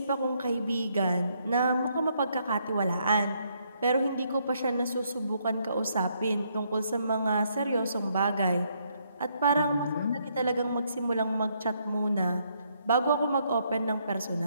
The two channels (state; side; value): inverted; both; correlation -0.73